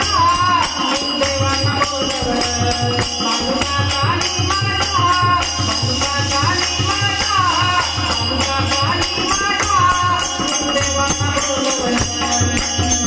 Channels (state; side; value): identical; both; correlation 1.00